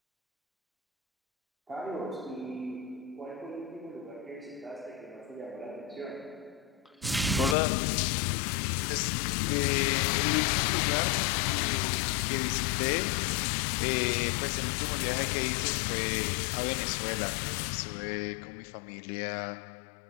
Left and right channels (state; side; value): drops out; right; at 7.6 s